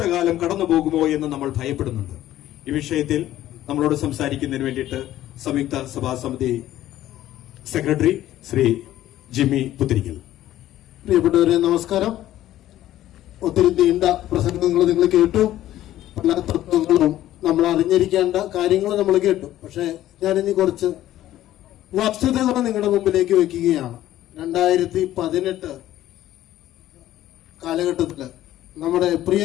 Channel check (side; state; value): right; quieter; 13.6 dB